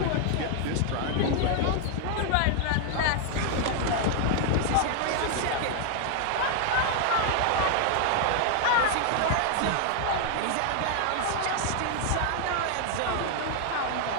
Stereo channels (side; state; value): both; different; correlation 0.00